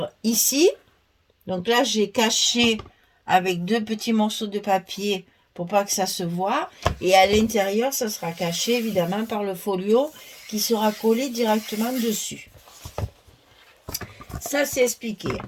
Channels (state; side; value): identical; both; correlation 1.00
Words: ici. Donc là j'ai caché avec 2 petits morceaux de papier pour pas que ça se voit. Et à l'intérieur ça sera caché évidemment par le folio qui sera collé directement dessus. Ça c'est expliqué.